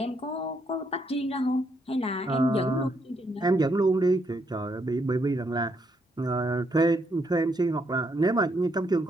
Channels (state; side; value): normal; both; correlation 0.75